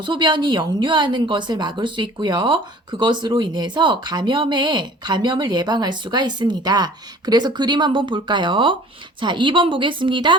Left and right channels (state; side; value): normal; both; correlation 0.48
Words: 소변이 역류하는 것을 막을 수 있고요. 그것으로 인해서 감염을 예방할 수가 있습니다. 그래서 그림 한번 볼까요? 자, 2번